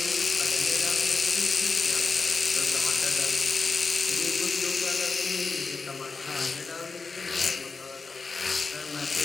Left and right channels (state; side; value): quieter; right; 4.4 dB